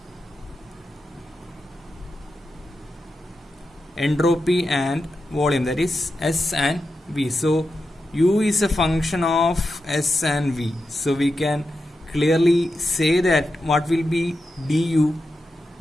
entropy and volume, that is S and V. So U is a function of S and V. So we can clearly say that what will be du?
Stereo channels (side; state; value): both; normal; correlation 0.89